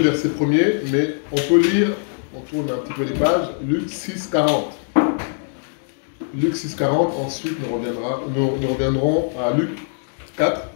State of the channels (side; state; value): right; silent; 65 dB below the other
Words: verset 1er, mais on peut lire, on tourne un petit peu les pages, Luc 6, 40. Luc 6, 40, ensuite nous reviendrons à Luc 4.